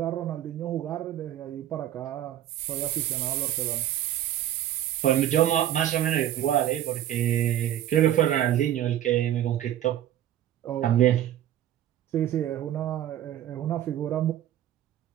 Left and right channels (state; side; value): quieter; left; 11.9 dB